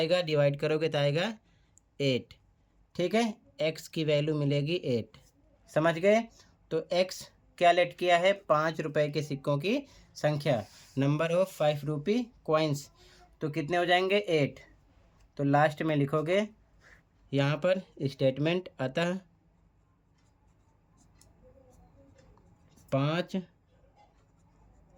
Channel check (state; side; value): identical; both; correlation 1.00